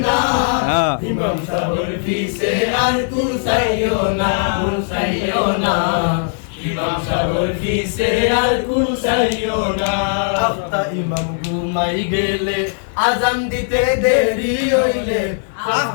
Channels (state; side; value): silent; right; 66 dB below the other